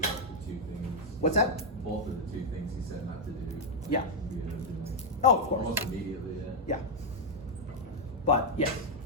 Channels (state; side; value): normal; both; correlation -0.02